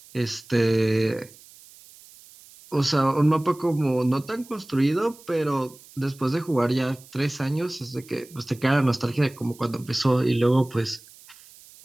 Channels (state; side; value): noise; right; hiss, 23 dB below the sound